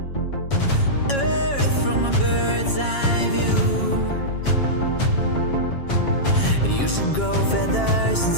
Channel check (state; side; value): late; right; 7.3 ms